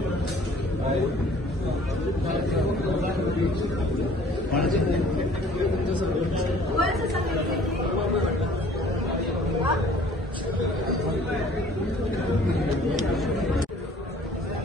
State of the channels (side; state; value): both; normal; correlation 0.53